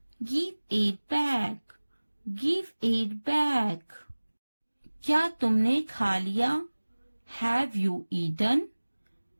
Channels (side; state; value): both; inverted; correlation -1.00